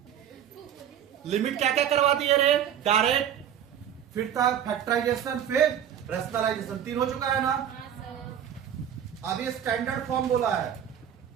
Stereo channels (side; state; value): left; quieter; 9.6 dB